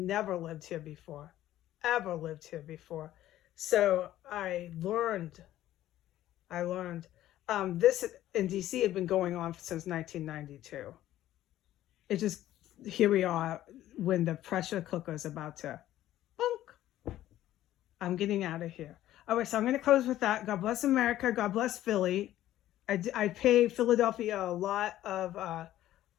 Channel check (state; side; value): quieter; right; 13.6 dB